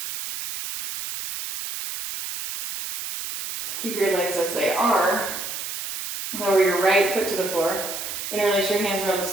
Keep your legs as they are. Lower your right foot to the floor. Interlace your hands around the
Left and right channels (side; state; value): right; noise; hiss, 6 dB below the sound